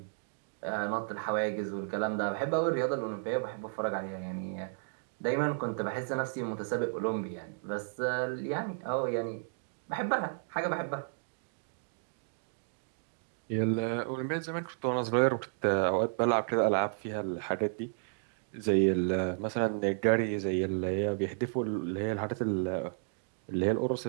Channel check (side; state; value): left; silent; digital silence